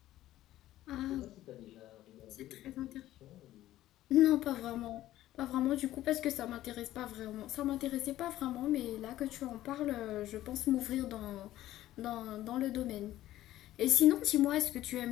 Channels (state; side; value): quieter; right; 14.3 dB